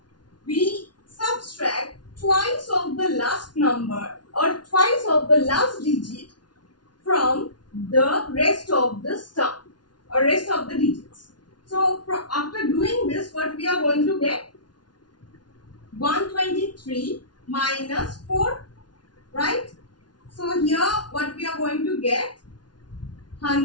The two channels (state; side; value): late; right; 0.70 ms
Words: We subtract twice of the last number or twice of the last digit from the rest of the sum or rest of the digits. So after doing this, what we are going to get? 123 minus 4, right? So here what we are going to get?